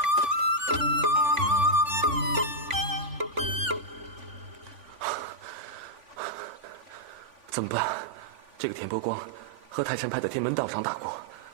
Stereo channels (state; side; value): late; left; 3.5 ms